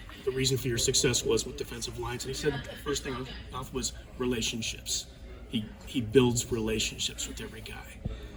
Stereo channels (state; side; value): identical; both; correlation 1.00